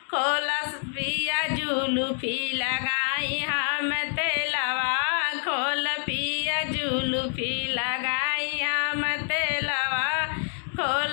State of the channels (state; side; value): silent; right; 60 dB below the other